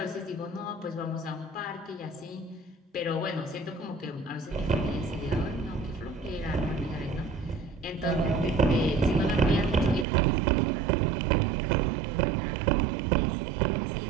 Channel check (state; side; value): drops out; left; at 10.1 s